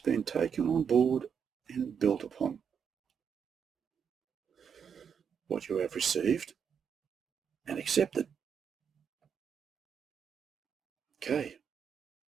taken on board and built upon. What you have received and accepted. Okay.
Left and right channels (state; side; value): quieter; left; 7.1 dB